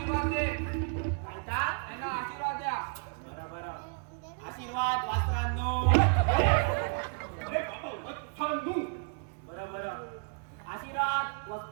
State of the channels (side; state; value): left; quieter; 39.9 dB